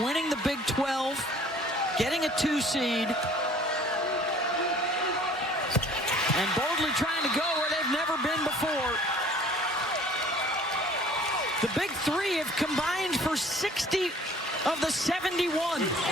the Big 12, getting a 2 seed, and boldly trying to go where they've never been before. The Big 3 have combined for 60 of the 71.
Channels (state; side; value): normal; both; correlation 0.52